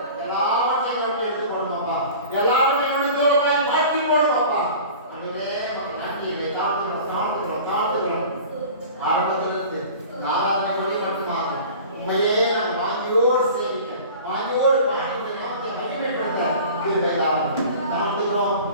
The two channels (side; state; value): both; inverted; correlation -0.40